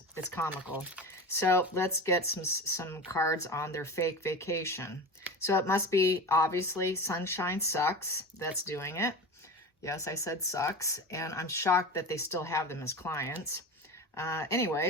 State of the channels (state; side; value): normal; both; correlation 0.29